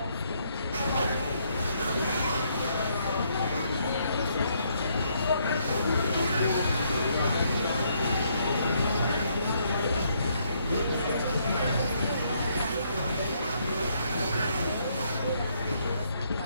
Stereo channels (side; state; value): both; inverted; correlation -0.72